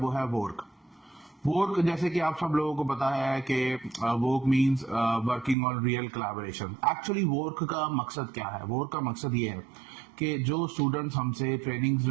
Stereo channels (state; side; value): drops out; left; at 5.6 s